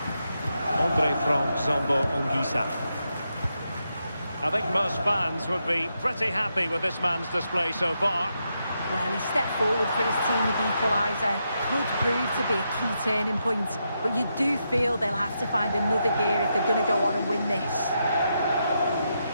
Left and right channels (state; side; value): inverted; both; correlation -0.83